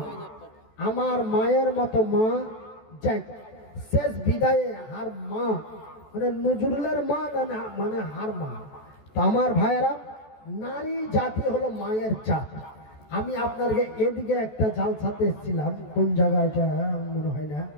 আমার মায়ের মতো মা, যাই শেষ বিদায়ে হার মা, মানে নজরুলের মা না, মানে হার মা। তো আমার ভাইয়েরা, নারী জাতি হলো মায়ের জাত। আমি আপনাকে এদিকে একটা জালসাতে এসেছিলাম, কোন জায়গাটা মনে হয় না,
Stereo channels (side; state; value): right; late; 14 ms